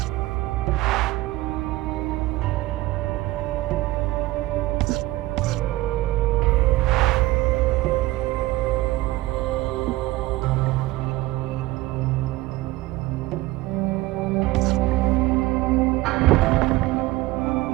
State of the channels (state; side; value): quieter; left; 18.6 dB